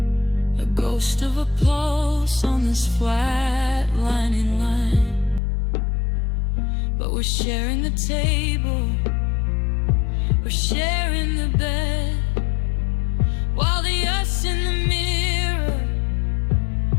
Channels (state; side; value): drops out; right; at 5.4 s